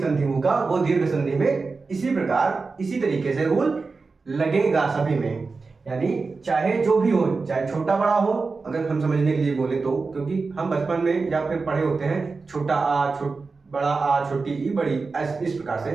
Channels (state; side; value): quieter; left; 4.2 dB